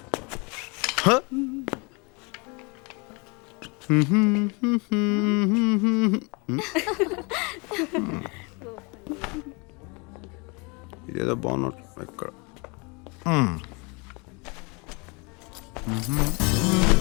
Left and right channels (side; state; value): right; quieter; 30.3 dB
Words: ఇదేదో బాగున్నట్టు ఎక్కడ.